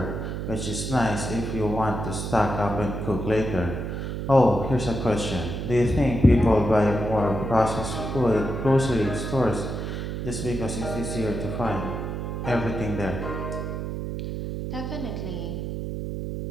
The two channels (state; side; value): noise; right; hum, 4 dB below the sound